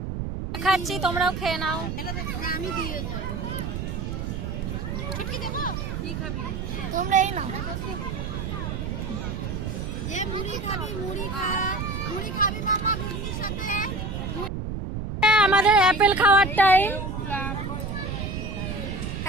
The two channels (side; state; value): right; noise; rumble, 4 dB below the sound